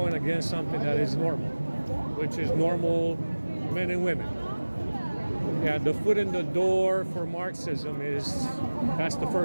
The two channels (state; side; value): inverted; both; correlation -1.00